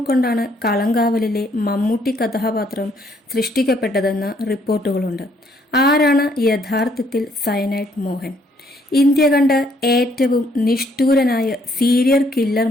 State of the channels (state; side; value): normal; both; correlation 0.68